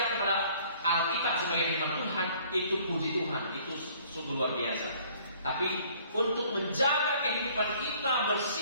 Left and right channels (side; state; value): both; inverted; correlation -0.57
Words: kepada Alkitab sebagai firman Tuhan, itu puji Tuhan, itu sungguh luar biasa. Tapi untuk menjaga kehidupan kita